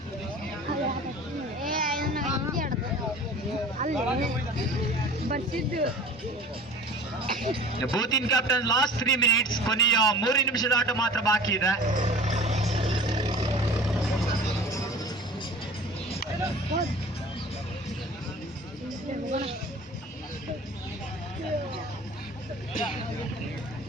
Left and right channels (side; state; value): both; normal; correlation 0.41